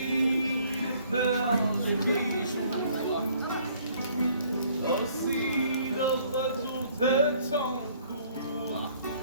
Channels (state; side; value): inverted; both; correlation -0.60